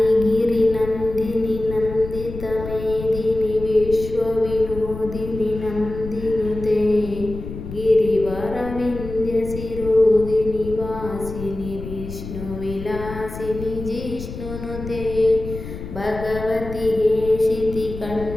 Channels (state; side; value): noise; left; rumble, 10 dB below the sound